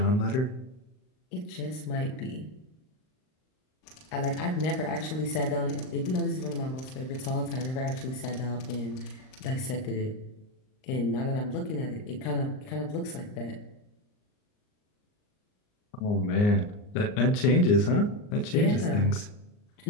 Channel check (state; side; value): late; right; 39 ms